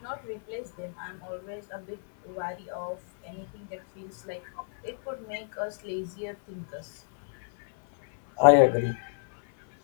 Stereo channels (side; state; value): right; silent; 58 dB below the other